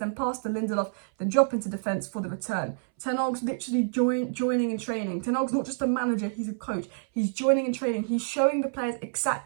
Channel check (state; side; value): silent; left; 60 dB below the other